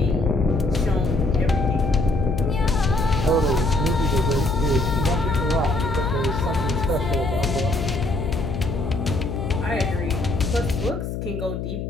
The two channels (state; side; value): noise; left; hum, 5 dB below the sound